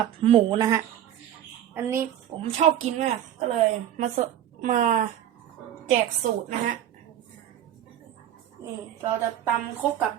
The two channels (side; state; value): left; quieter; 11.0 dB